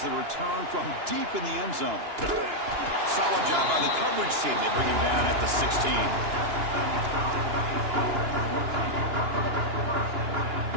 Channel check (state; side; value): late; left; 2.9 ms